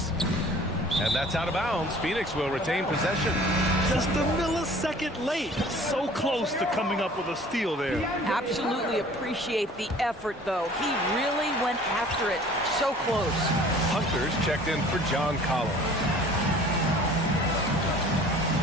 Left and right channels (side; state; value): both; normal; correlation 0.49